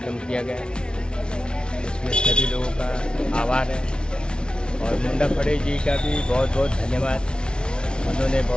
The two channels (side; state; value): right; late; 0.055 ms